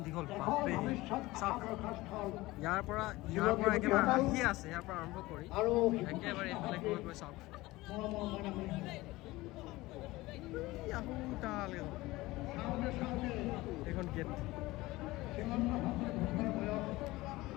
দীঘল বাপৰে চাওক ইয়াৰ পৰা একেবাৰে আহি আছে ইয়াৰ পৰা আৰম্ভ কৰি একেবাৰে এইফালে গৈ গৈ চাওক এইখন গেট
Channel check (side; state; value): right; quieter; 19.5 dB